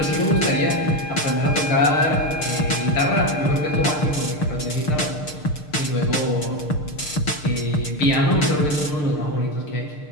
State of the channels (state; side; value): late; right; 6.6 ms